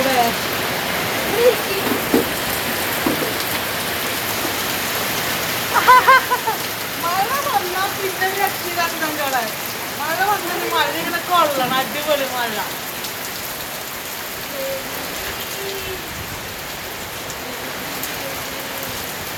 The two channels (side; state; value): both; identical; correlation 1.00